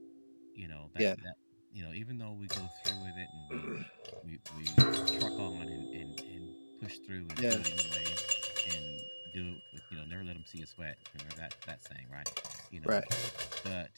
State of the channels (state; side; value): inverted; both; correlation -1.00